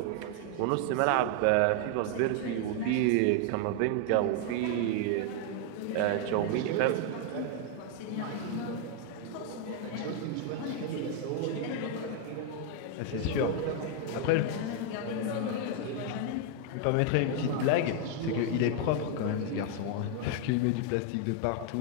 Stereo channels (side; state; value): both; different; correlation 0.00